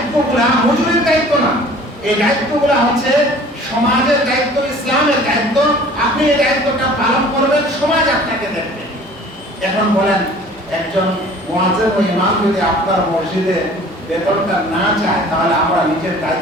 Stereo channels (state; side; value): normal; both; correlation 0.48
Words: মজুরির দায়িত্ব না, এই দায়িত্বগুলা হচ্ছে সমাজের দায়িত্ব, ইসলামের দায়িত্ব। আপনি এই দায়িত্বটা পালন করবেন, সমাজ আপনাকে দেখবে। এখন বলেন একজন মুয়াজ্জিন ও ইমাম যদি আপনার মসজিদে বেতনটা না চায়, তাহলে আমরা নিজের